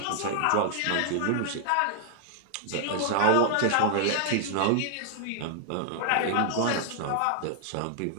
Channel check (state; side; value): different; both; correlation 0.00